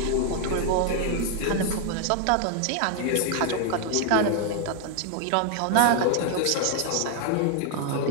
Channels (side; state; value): both; different; correlation 0.00